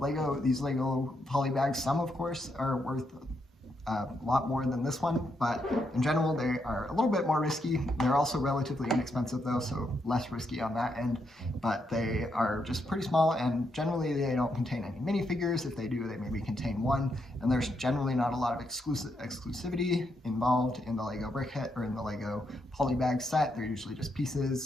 these Lego Polybags, some of course are worth a lot more than this one, but in general they are a little bit more risky. They're also relatively inexpensive though, so less risky on that end, but they are just pretty small, and generally they don't contain any minifigures. If they do, they maybe contain one, and there's generally not a lot of exclusivity involved in the Lego Brickhead or in the Lego Polybag set. They're usually just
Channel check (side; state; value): both; normal; correlation 0.80